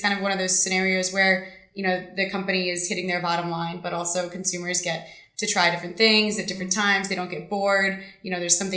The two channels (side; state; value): both; identical; correlation 1.00